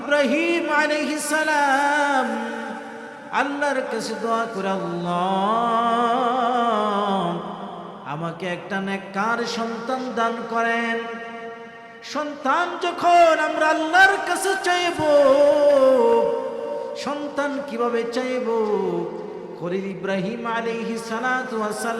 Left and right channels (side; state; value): both; identical; correlation 1.00